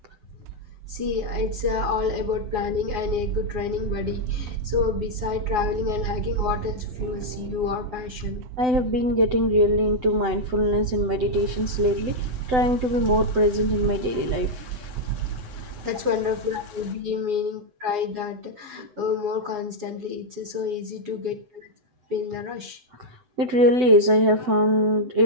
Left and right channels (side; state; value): left; late; 7.9 ms